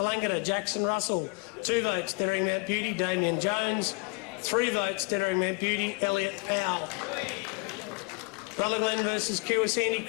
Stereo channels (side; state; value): right; quieter; 31.6 dB